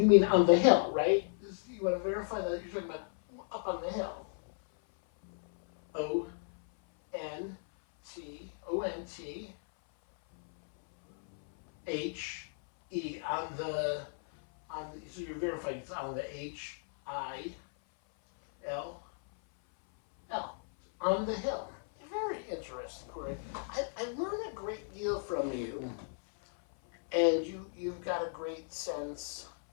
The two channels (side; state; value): right; silent; 55 dB below the other